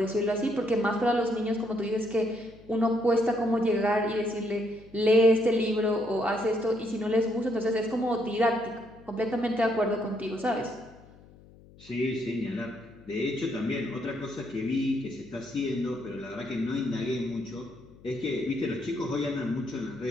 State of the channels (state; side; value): noise; left; hum, 23 dB below the sound